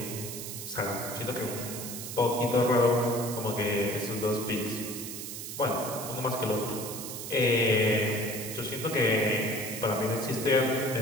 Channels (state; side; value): noise; right; hiss, 8 dB below the sound